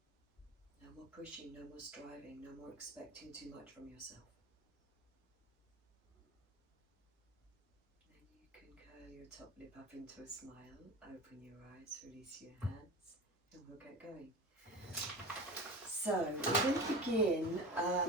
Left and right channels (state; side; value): normal; both; correlation 0.30